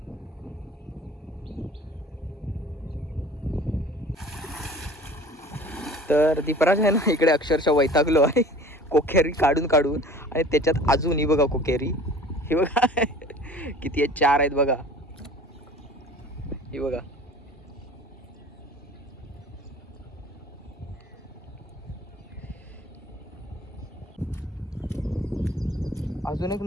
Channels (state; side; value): normal; both; correlation 0.45